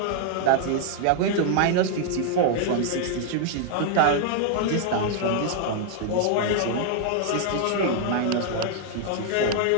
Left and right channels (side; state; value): both; different; correlation 0.00